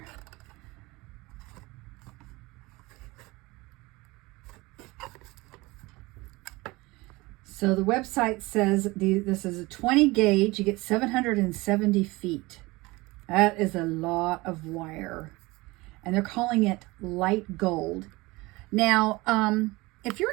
So the website says this is a 20 gauge. You get 770 feet. That is a lot of wire. And they're calling it light gold. Now, if you're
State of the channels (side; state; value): left; quieter; 22.3 dB